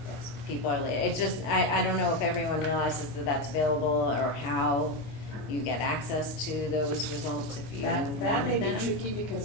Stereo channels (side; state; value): right; late; 24 ms